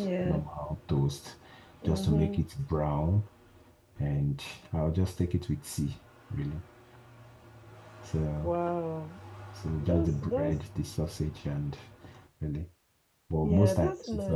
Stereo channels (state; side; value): identical; both; correlation 1.00